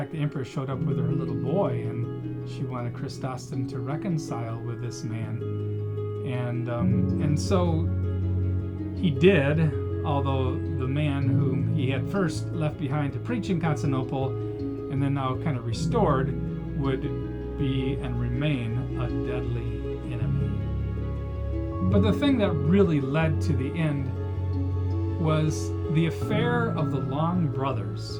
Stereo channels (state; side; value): identical; both; correlation 1.00